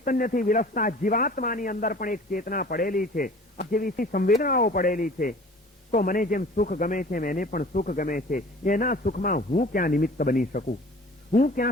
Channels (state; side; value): normal; both; correlation 0.46